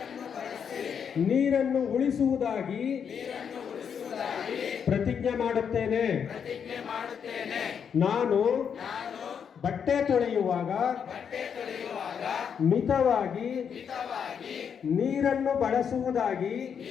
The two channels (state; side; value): quieter; right; 7.3 dB